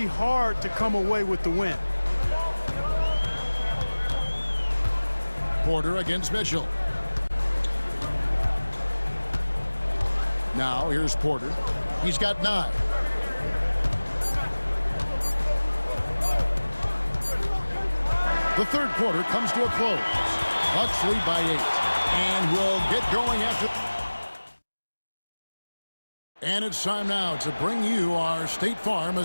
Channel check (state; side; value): inverted; both; correlation -1.00